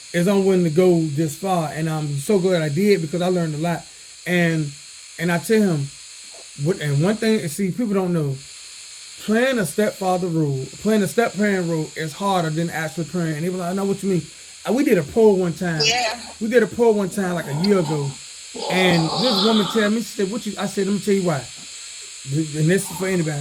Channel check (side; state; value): both; identical; correlation 1.00